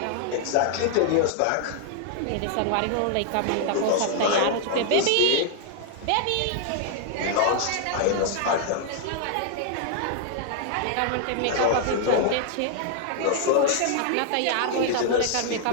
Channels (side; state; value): both; different; correlation 0.00